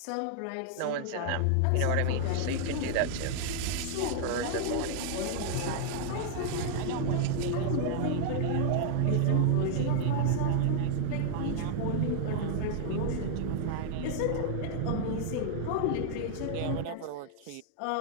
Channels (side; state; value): both; different; correlation 0.00